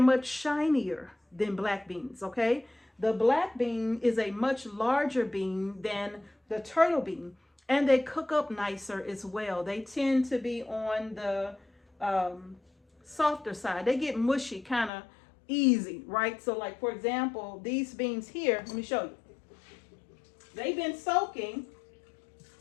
much shinier than black beans, okay? The black bean is a much larger bean than the turtle bean, and they cook up nicer as well. They tend to be on the softer side. They get mushy kind of easy, right? So like, for example, these beans here, let me show you. They've been soaking,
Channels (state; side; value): drops out; right; at 14.9 s